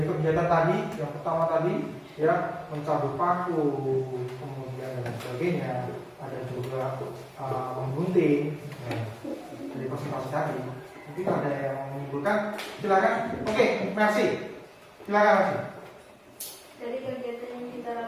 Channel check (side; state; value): both; identical; correlation 1.00